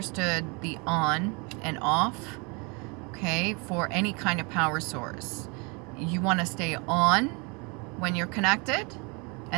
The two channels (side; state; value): left; quieter; 30.7 dB